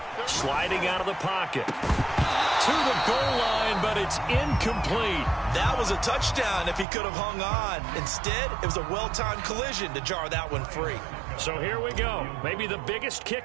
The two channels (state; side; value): drops out; left; at 6.9 s